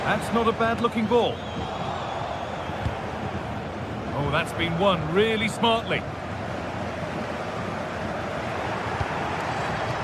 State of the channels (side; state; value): both; identical; correlation 1.00